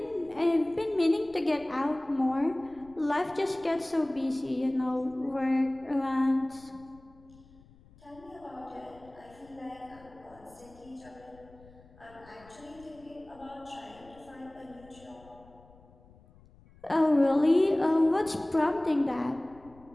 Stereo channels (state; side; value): noise; left; rumble, 25 dB below the sound